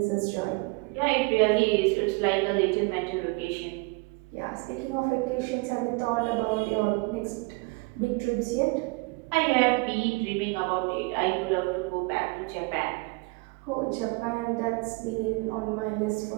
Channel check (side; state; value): left; quieter; 27.1 dB